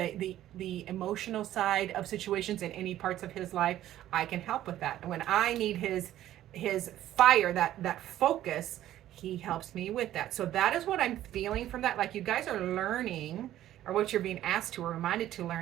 emotional side of situations in any parts of his life, I can help with that. And when I need his fire, that focus, he helps me with that. So that is what I'm feeling from that. Like, you guys are learning, or what you're being asked to or reminded to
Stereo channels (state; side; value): quieter; left; 13.1 dB